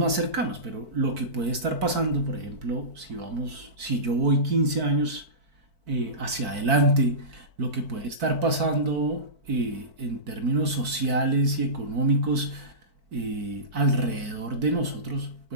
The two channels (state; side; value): late; left; 4.5 ms